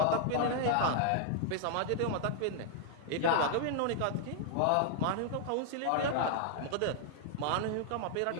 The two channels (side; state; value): both; different; correlation -0.01